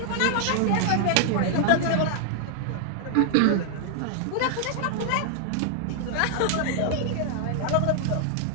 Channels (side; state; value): both; different; correlation 0.00